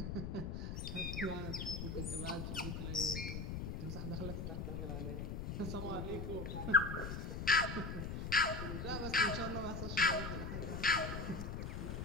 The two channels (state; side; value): noise; left; rumble, 4 dB below the sound